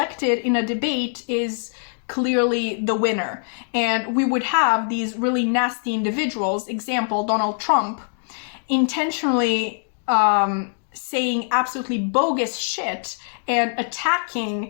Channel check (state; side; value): silent; right; digital silence